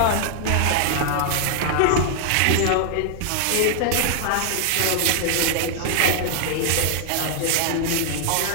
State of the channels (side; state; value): both; different; correlation 0.00